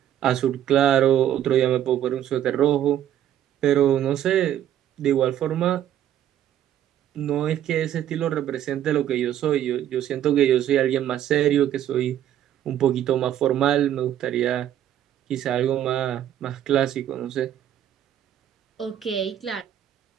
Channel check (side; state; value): left; quieter; 11.0 dB